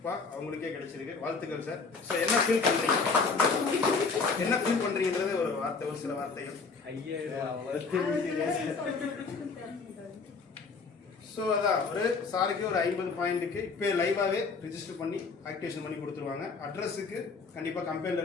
அவங்களுக்கே கிடைச்சிருக்கு. வாழ்த்துக்கள் சார். ஸோ என்ன ஃபீல் பண்றீங்க? என்ன ஃபீல் பண்றீங்கன்றது ஒரு வார்த்தை, ஒரு சில வார்த்தைகள். ஸோ அதான் ஒரு சாருக்கு ஒரு 50 பாயிண்ட்டுக்கு இப்போ லைவாகவே ரிஜிஸ்டர் பண்ணி ஆக்டிவேஷன் பண்ணி கொடுத்துருவாங்க. அட்ரஸுக்கு கண்டிப்பாக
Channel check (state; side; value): quieter; right; 4.7 dB